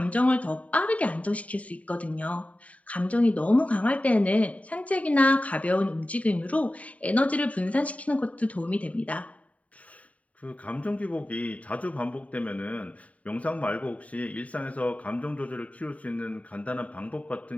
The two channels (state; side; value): late; right; 0.068 ms